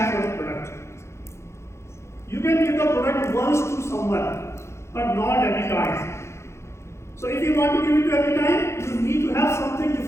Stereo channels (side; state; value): right; late; 0.13 ms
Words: for the product. You can give the product once to someone, but not every time. So if you want to give it to every time, you need to have something